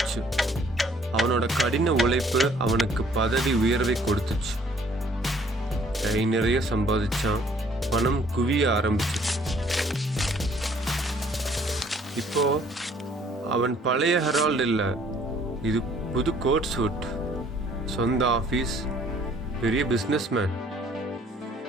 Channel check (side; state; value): both; normal; correlation 0.60